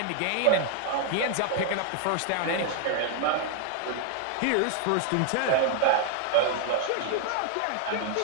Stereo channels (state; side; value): different; both; correlation 0.00